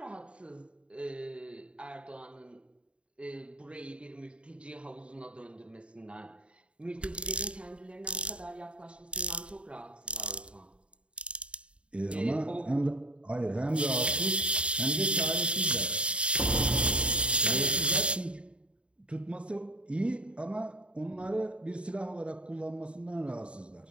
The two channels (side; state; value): left; late; 0.058 ms